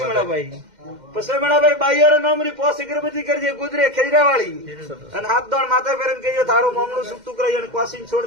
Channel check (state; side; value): late; left; 2.1 ms